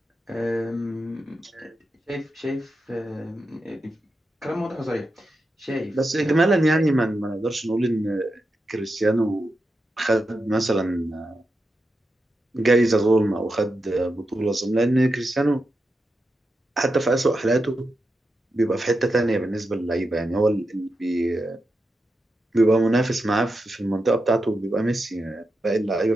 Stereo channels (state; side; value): normal; both; correlation 0.88